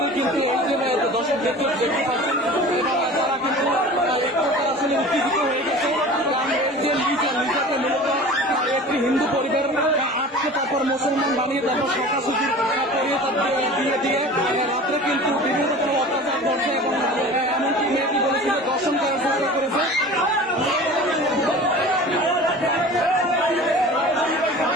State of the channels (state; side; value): normal; both; correlation 0.39